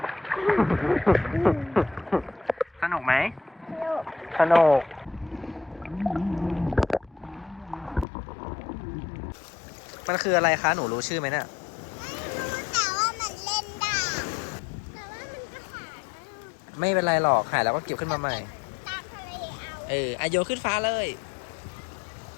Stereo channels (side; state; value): right; drops out; at 8.1 s